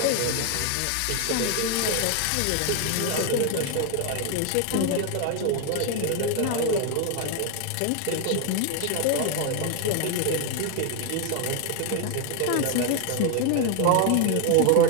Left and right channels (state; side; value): different; both; correlation 0.00